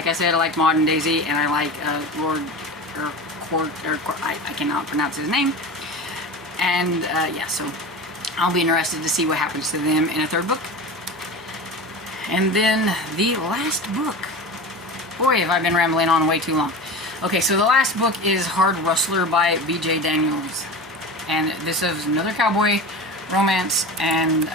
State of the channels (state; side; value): normal; both; correlation 0.30